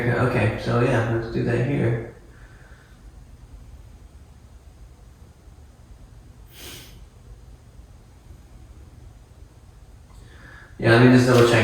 cap. Okay, so yeah, let's do that here. Yeah, let me just double check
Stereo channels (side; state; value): both; identical; correlation 1.00